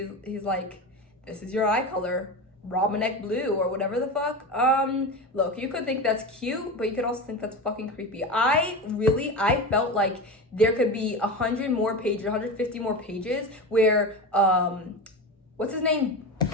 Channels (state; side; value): normal; both; correlation 0.24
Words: like, this is your eye color, Romanek blue, or whatever the fuck. Look, you could think that's cute, but you could also think that's fucking creepy. I felt like there could be 100 more pages, 150 more pages where, what's his name?